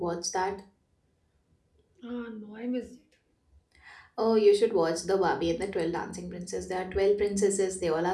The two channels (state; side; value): identical; both; correlation 1.00